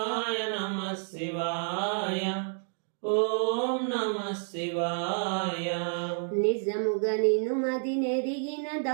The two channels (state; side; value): silent; left; 58 dB below the other